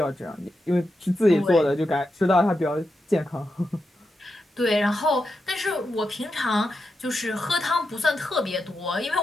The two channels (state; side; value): normal; both; correlation 0.87